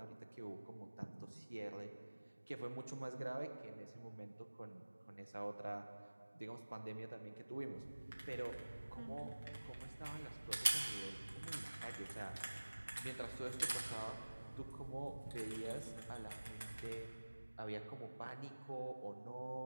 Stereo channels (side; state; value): both; inverted; correlation -1.00